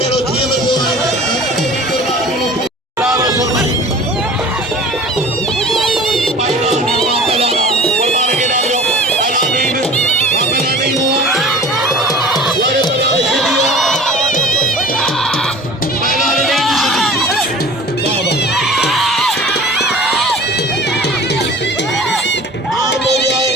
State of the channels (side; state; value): both; normal; correlation 0.42